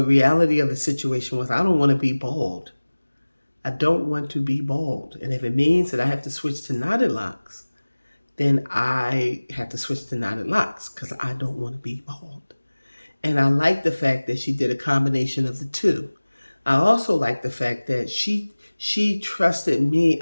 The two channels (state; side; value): inverted; both; correlation -1.00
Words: reality of the situation was I don't want to be bald. I don't want to be bald. And if it means that I have to switch to knotted locks, then I have to switch to knotted locks because I don't want to be bald. And I like the fact that she did a combination of the two. I also like the fact that she trusted me